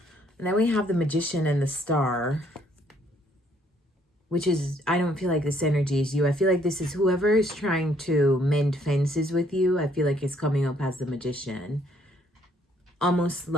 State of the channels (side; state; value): both; normal; correlation 0.66